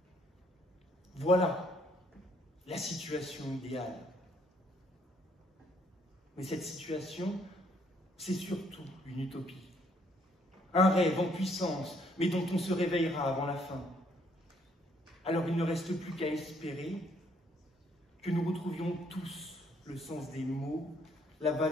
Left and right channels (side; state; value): both; normal; correlation 0.68